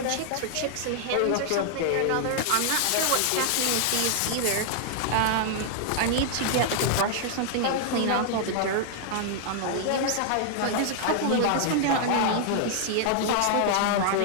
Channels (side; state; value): both; different; correlation 0.00